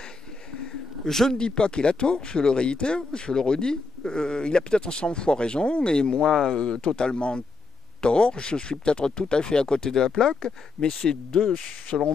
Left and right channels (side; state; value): right; quieter; 3.9 dB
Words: Je ne dis pas qu'il a tort, je le réitère, je le redis. Il a peut-être 100 fois raison, et moi totalement tort. Je suis peut-être tout à fait à côté de la plaque, mais c'est selon